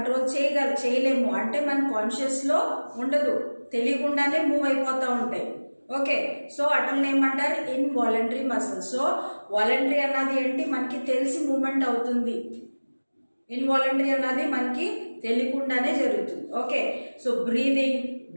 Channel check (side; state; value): both; inverted; correlation -1.00